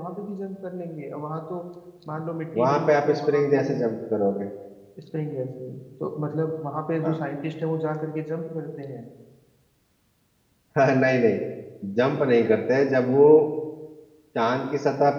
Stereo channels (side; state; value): both; identical; correlation 1.00